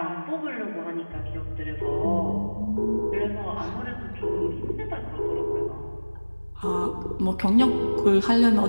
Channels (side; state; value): both; inverted; correlation -1.00